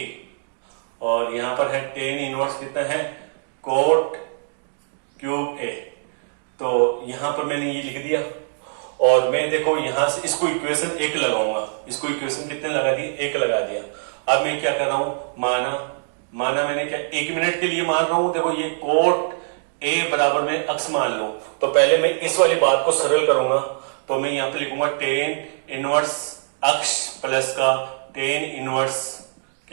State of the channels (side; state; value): left; silent; digital silence